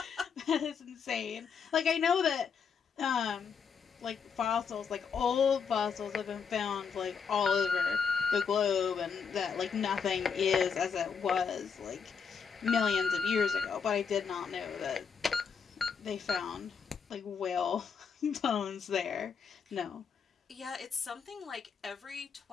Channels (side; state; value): right; quieter; 6.3 dB